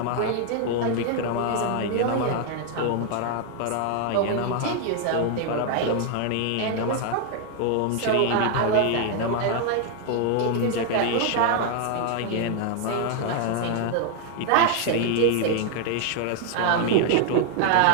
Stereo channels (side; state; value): both; different; correlation 0.00